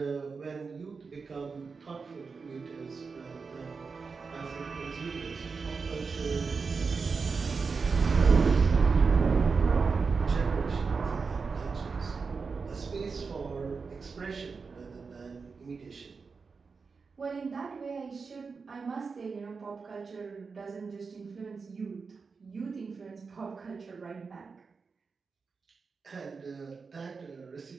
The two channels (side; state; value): left; quieter; 4.9 dB